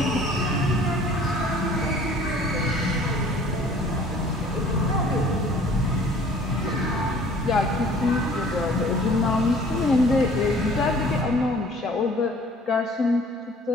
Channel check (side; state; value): both; normal; correlation 0.52